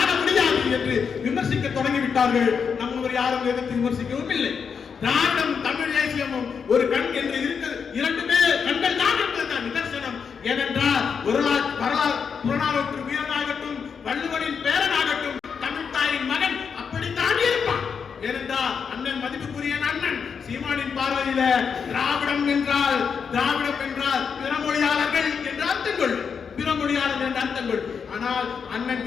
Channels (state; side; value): quieter; right; 6.3 dB